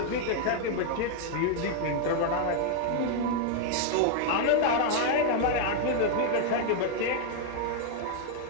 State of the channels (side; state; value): both; different; correlation 0.00